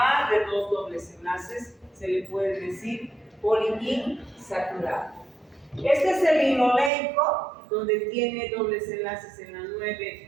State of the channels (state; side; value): drops out; left; at 6.9 s